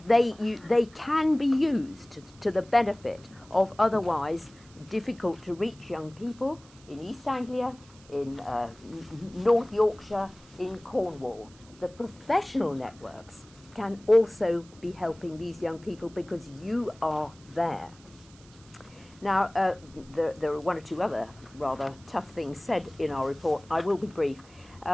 they can be used to the benefit of otherwise difficult to reach young people in East Anglia, in North Yorkshire, in Cornwall. The professional networks can also be helping these young people because you are there. Now, there are one or two other rather tough things said in our report. I will be brief.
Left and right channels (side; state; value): right; noise; hiss, 25 dB below the sound